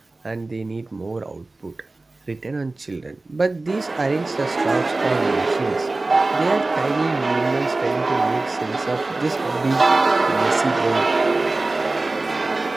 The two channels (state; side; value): quieter; left; 3.2 dB